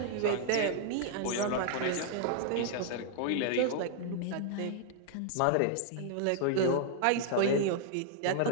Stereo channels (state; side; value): different; both; correlation 0.00